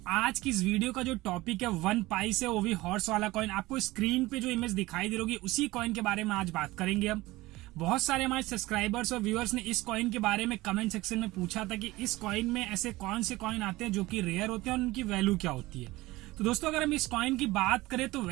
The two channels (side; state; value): left; quieter; 19.3 dB